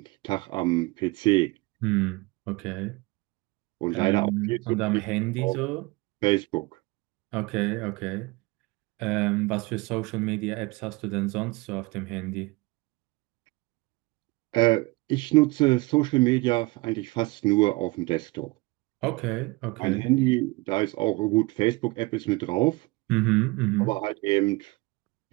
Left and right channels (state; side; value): quieter; left; 23.7 dB